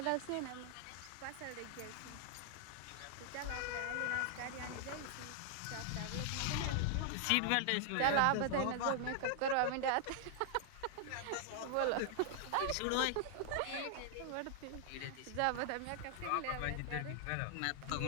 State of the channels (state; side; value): different; both; correlation 0.00